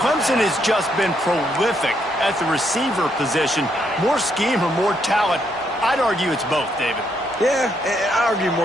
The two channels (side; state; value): both; normal; correlation 0.75